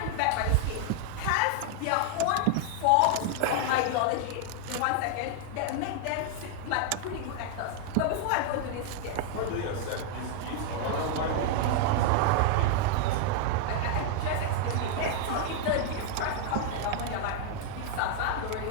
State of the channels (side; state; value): both; different; correlation 0.00